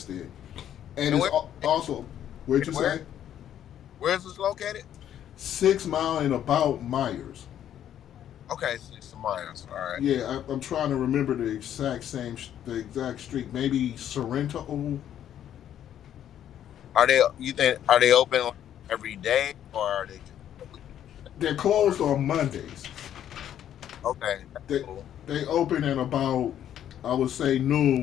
and And it's also where'd you where say where's this located? 6 Mile and about Myers. Okay, 6 miles. All right. Yeah, I'm trying to remember the exact street. Maybe Sorrento. Are they? You think are they open like every day or are they just a week? They're closed on Mondays. Okay, that's They cool. they open at about I would say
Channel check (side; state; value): right; quieter; 10.5 dB